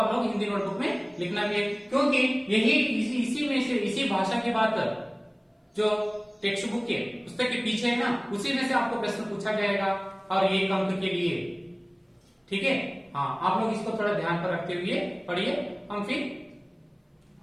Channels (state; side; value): identical; both; correlation 1.00